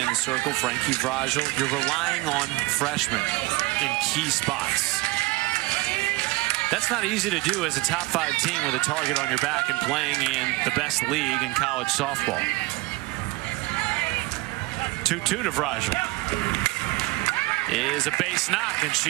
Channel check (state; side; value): quieter; left; 22.4 dB